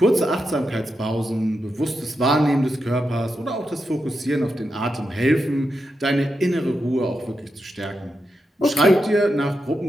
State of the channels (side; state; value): both; normal; correlation 0.87